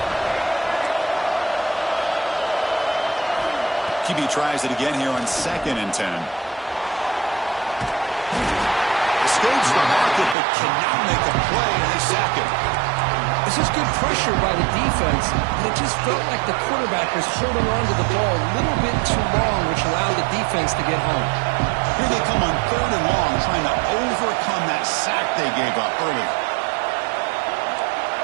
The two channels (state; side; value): drops out; left; at 10.4 s